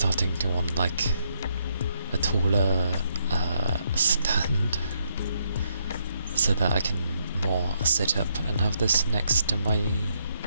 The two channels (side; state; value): both; inverted; correlation -0.76